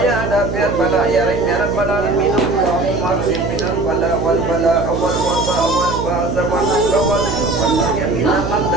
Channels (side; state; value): right; noise; hum, 4 dB below the sound